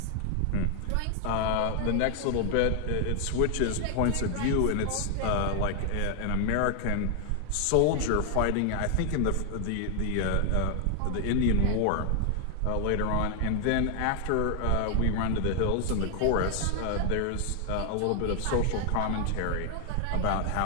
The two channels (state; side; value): different; both; correlation 0.00